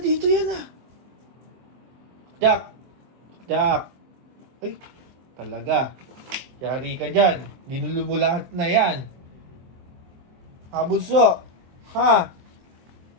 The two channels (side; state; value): left; late; 23 ms